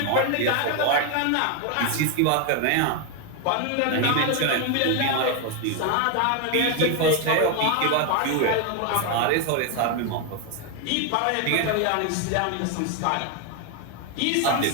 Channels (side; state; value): both; different; correlation 0.01